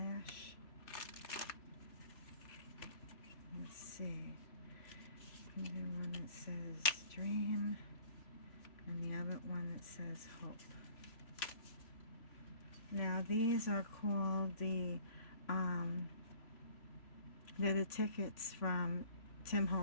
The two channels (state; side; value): late; right; 3.0 ms